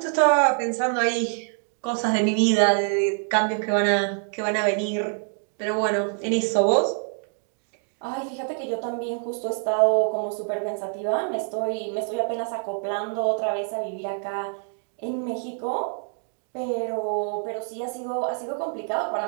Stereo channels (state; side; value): silent; left; 58 dB below the other